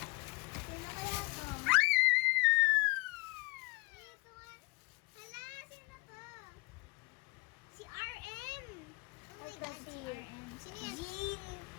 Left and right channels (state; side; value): quieter; right; 25.2 dB